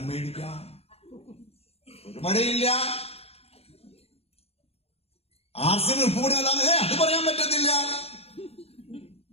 മേടിക്കാം, ഒരു മഴയില്ല. ആർസിന് ഉപ്പ് കൂടി നല്ലാതെ അത് പറയാൻ പറ്റത്തില്ല,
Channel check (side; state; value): right; late; 0.29 ms